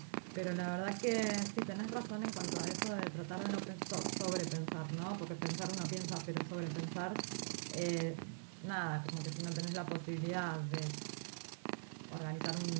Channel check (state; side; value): silent; left; digital silence